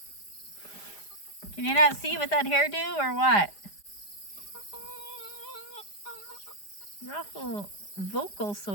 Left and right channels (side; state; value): right; late; 4.9 ms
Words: Can you not see with that hairdo or what? You're awful vocal, so